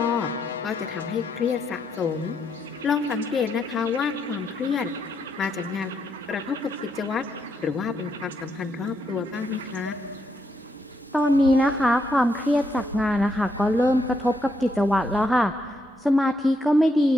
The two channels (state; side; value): normal; both; correlation 0.78